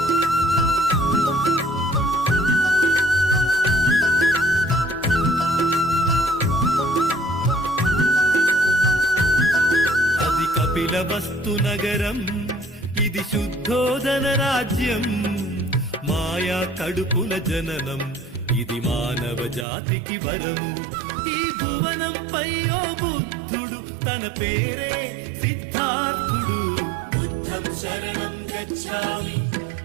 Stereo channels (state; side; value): drops out; left; at 19.7 s